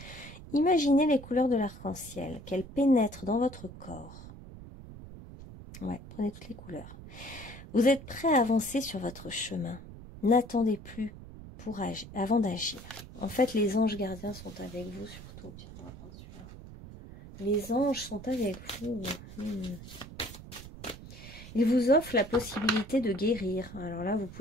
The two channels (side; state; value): right; noise; rumble, 15 dB below the sound